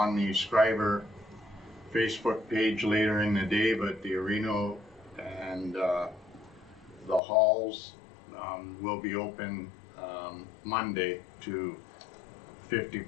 the Schreiber Facebook page later in the day, but the arena and the halls will be open Monday to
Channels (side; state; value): right; drops out; at 7.2 s